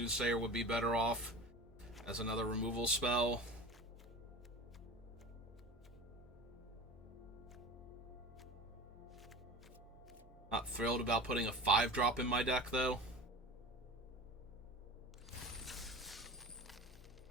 would be better off as another removal spell. Not thrilled about putting a 5-drop in my deck, though.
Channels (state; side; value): normal; both; correlation 0.35